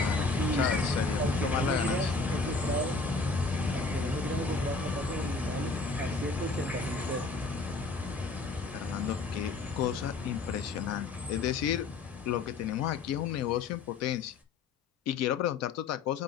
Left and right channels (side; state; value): right; quieter; 3.9 dB